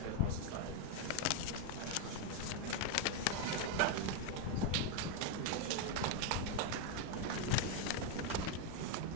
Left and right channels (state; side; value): different; both; correlation 0.01